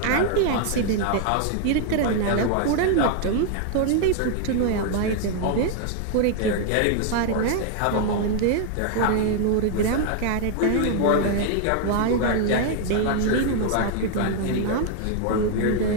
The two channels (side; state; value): both; different; correlation 0.00